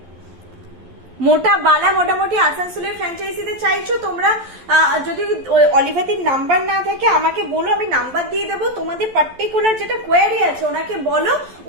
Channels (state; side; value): late; left; 11 ms